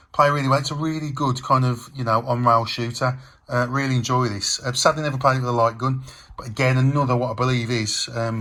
Play really well. It's a really good kind of, on-rail shooter. Really enjoy this. Sadly, never played it with a light gun. But again, another, what I believe is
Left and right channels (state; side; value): identical; both; correlation 1.00